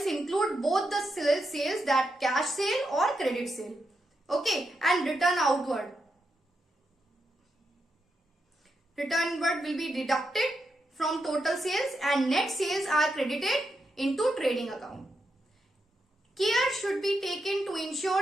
include both the sales that cash sale और credit sale. Okay, and return outward. Return inward will be deducted from total sales and net sales are credited into trading account. Care should be taken to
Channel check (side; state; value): both; normal; correlation 0.84